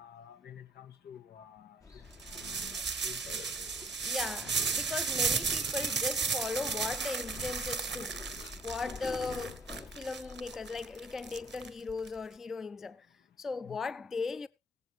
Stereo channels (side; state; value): both; normal; correlation 0.57